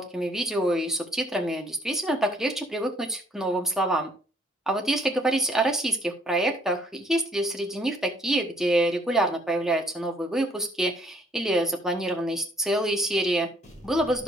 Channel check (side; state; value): both; normal; correlation 0.63